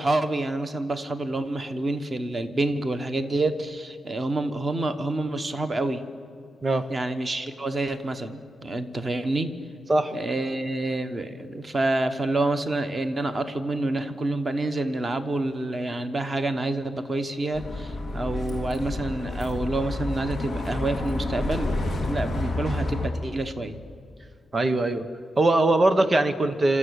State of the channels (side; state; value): both; normal; correlation 0.89